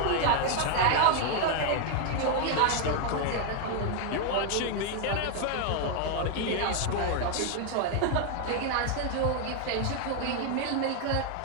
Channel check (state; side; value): different; both; correlation 0.00